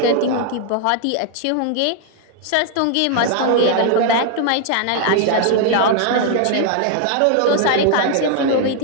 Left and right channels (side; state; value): both; different; correlation 0.00